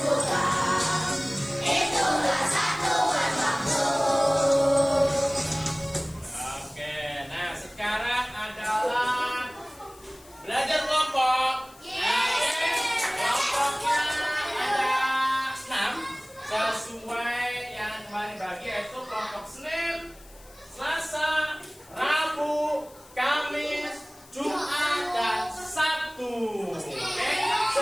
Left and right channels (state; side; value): noise; left; hiss, 24 dB below the sound